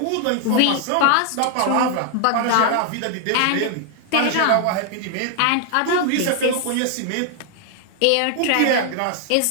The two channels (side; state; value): both; different; correlation 0.00